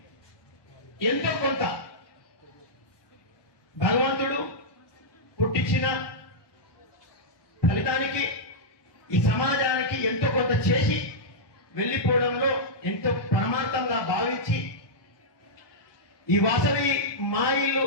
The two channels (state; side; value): late; right; 1.2 ms